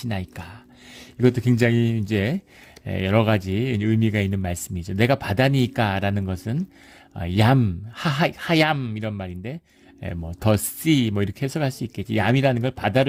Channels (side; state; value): both; identical; correlation 1.00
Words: 이것도 굉장히 이제 여러 가지 의미가 있는 말씀이죠. 내가 바다니까 라는 것은 하얌 이런 말인데 뭐 더 씨 뭐 이렇게 해석할 수 있겠지. 얌이라는 걸